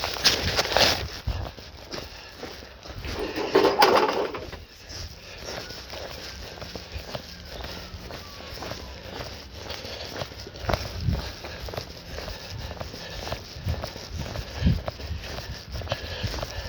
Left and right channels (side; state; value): both; identical; correlation 1.00